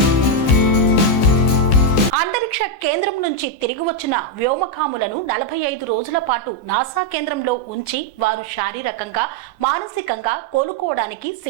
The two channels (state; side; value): late; right; 14 ms